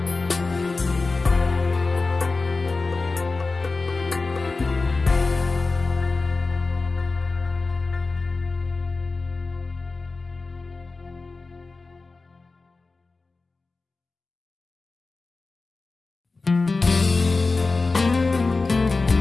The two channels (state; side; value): quieter; right; 3.8 dB